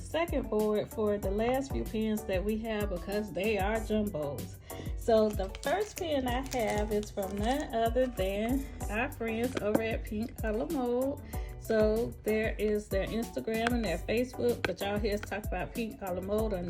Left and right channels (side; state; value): both; identical; correlation 1.00